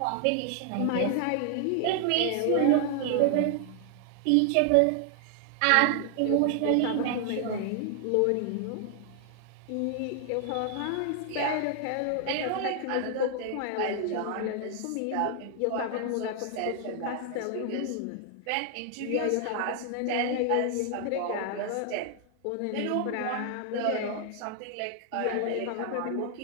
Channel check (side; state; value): both; different; correlation 0.00